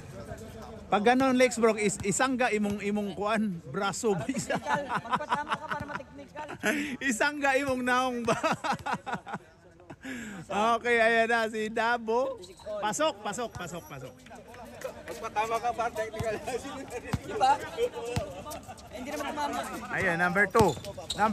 Pag ganon, Lex Brock, isangga imong kuan, braso ba isa? Magpatama ka para mateknikal. Isangga imong naong ba? Okay, ayan na si Dabo. Pasok. Magpatama ka para technical. Di ba? Hindi naman tumama. Ayan, number 2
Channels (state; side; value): identical; both; correlation 1.00